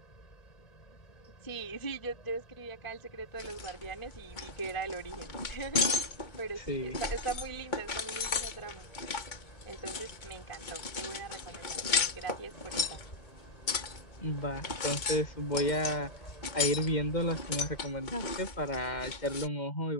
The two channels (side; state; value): right; late; 2.2 ms